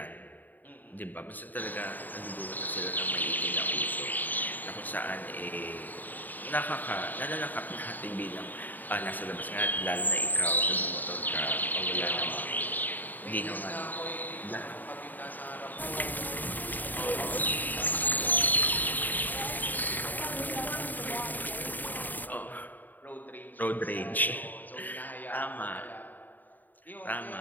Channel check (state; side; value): late; right; 0.086 ms